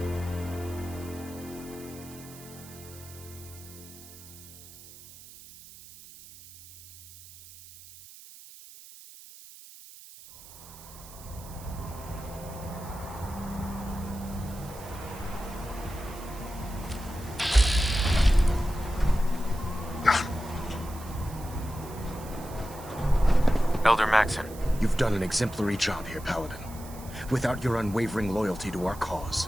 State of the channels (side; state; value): right; noise; hiss, 18 dB below the sound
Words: Elder Maxon. You've done an exemplary job here, Paladin. Without your unwavering loyalty to our cause,